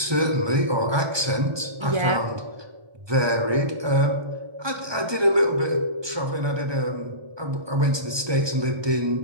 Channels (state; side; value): late; left; 1.2 ms